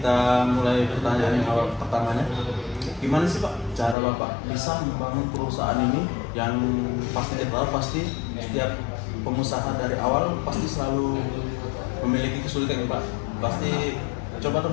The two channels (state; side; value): drops out; right; at 4.0 s